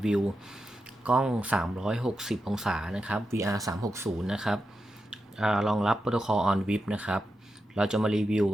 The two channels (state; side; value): normal; both; correlation 0.88